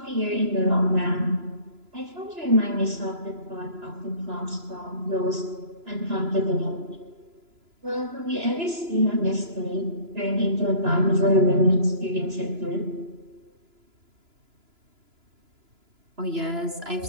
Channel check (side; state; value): left; late; 2.9 ms